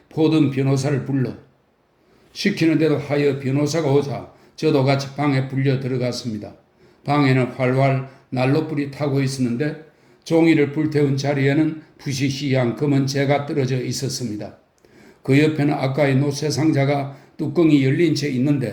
포든 변호사를 불러. 시키는데도 하여 변호사가 오자 저도 같이 방에 불려 들어갔습니다. 방에는 활활 난로불이 타고 있었는데 종이를 불태운 자리에는 부시시한 검은 재가 떨어져 있었습니다. 그 옆에는 아까의 노쇠 상자가 뚜껑이 열린 채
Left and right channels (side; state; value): both; identical; correlation 1.00